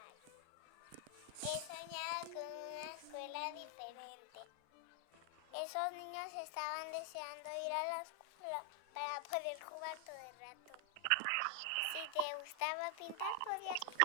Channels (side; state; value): both; different; correlation 0.00